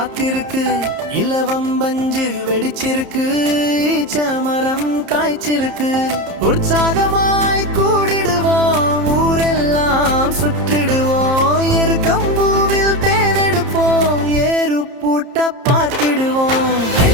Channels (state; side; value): late; left; 30 ms